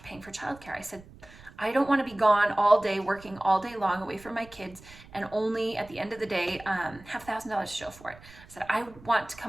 paying for childcare. I said, I don't want to be gone all day, working all day long away from my kids and only at the end of the day have $1,000 to show for it. I said,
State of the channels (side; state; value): right; noise; rumble, 21 dB below the sound